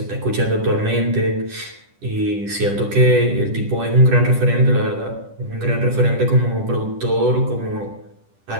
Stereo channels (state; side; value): late; left; 10 ms